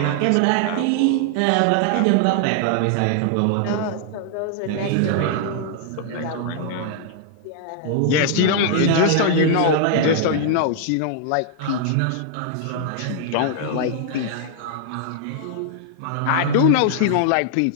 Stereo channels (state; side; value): different; both; correlation -0.01